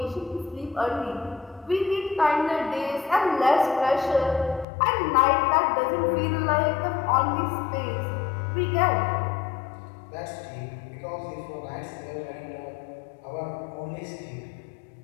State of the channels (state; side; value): drops out; right; at 4.7 s